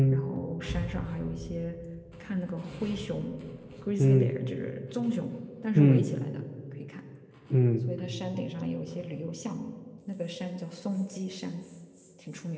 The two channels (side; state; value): both; identical; correlation 1.00